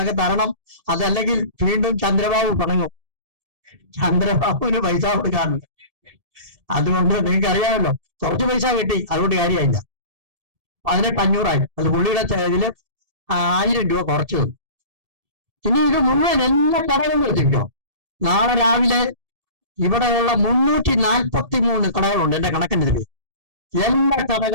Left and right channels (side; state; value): left; late; 1.7 ms